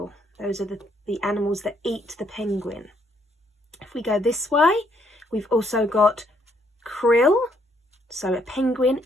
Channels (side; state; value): both; normal; correlation 0.70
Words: Those are the animals that eat the penguin. If we go this way, we've also got krill. So a penguin